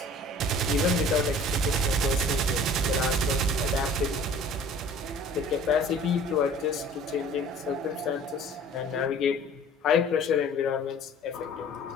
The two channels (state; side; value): normal; both; correlation 0.47